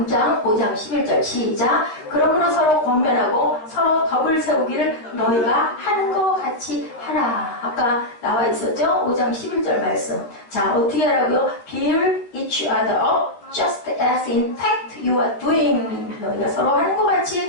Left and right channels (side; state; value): right; late; 13 ms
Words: 장 5장 11절 시작. 그러므로 서로 권면하고 서로 덕을 세우기를 너희가 하는 것 같이 하라. 아까 나와 있었죠? 5장 11절 말씀. 자, 어떻게 하라고요? Build each other up just as in fact you are doing. 너희가 서로 하는 것